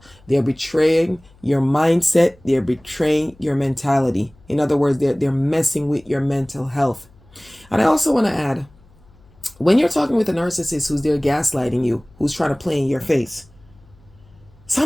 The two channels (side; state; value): left; noise; hum, 28 dB below the sound